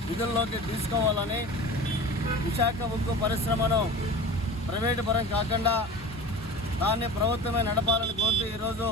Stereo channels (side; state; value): both; normal; correlation 0.36